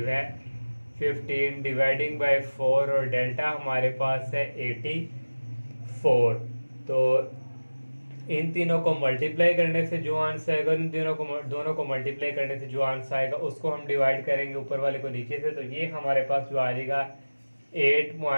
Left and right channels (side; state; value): both; inverted; correlation -1.00